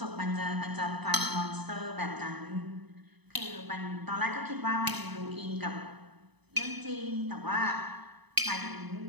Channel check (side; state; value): left; late; 0.99 ms